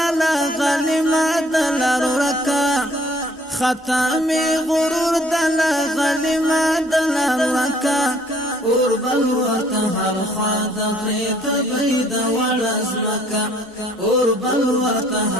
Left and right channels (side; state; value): both; normal; correlation 0.60